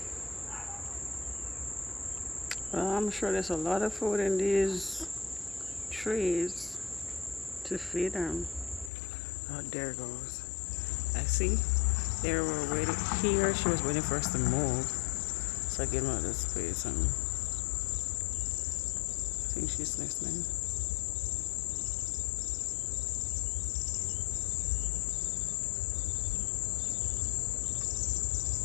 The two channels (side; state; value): right; drops out; at 8.9 s